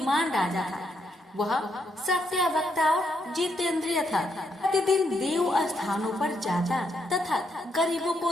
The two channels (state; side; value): normal; both; correlation 0.77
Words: राजा था। वह सत्यवक्ता और जितेंद्रिय था। प्रतिदिन देव स्थानों पर जाता तथा गरीबों को